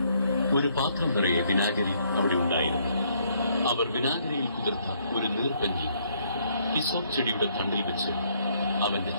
ഒരു പാത്രം നിറയെ വിനാഗിരി അവിടെ ഉണ്ടായിരുന്നു. അവർ വിനാഗിരിയിൽ കുതിർത്ത ഒരു നീർപ്പഞ്ഞി ഹിസോപ്പ് ചെടിയുടെ തണ്ടിൽ വെച്ച് അവന്റെ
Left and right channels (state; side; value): inverted; both; correlation -0.68